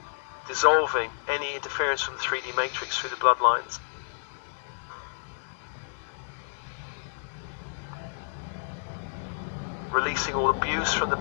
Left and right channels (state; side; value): silent; right; digital silence